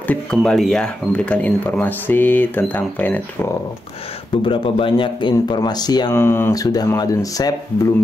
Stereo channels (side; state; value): both; normal; correlation 0.87